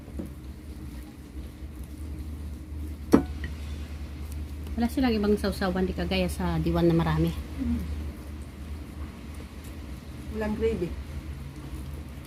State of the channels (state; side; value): identical; both; correlation 1.00